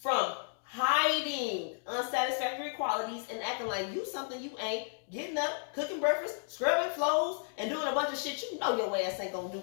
hiding unsatisfactory qualities and acting like you something you ain't, getting up, cooking breakfast, scrubbing floors, and doing a bunch of shit you know your ass ain't gonna do.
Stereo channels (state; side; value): silent; right; digital silence